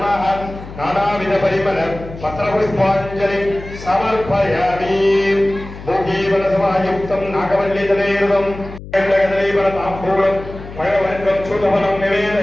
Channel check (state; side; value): noise; left; hum, 14 dB below the sound